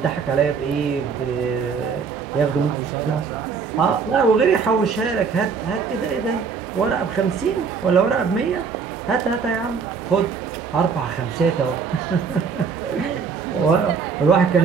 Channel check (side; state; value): left; quieter; 5.7 dB